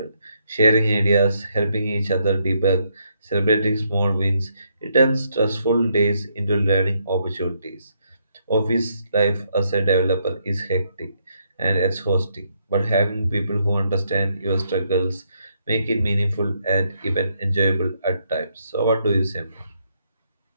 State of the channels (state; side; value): inverted; both; correlation -0.75